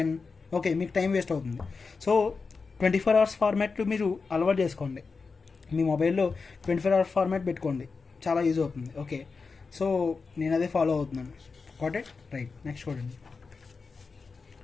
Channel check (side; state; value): right; quieter; 4.6 dB